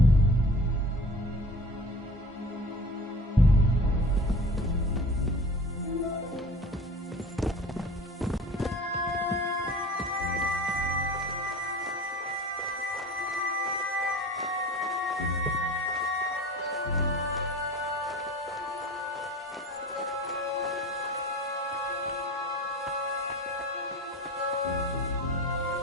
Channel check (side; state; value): both; normal; correlation 0.39